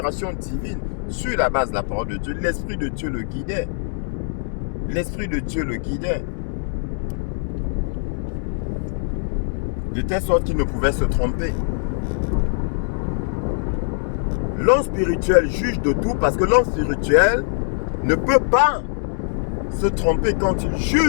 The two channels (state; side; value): silent; right; 59 dB below the other